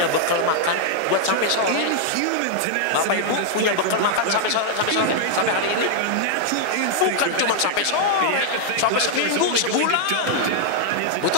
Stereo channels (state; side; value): different; both; correlation -0.01